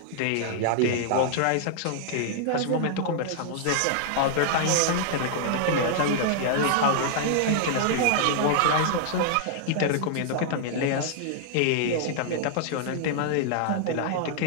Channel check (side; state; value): both; different; correlation -0.01